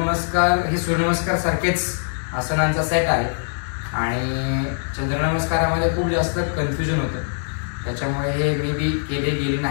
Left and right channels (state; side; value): silent; right; digital silence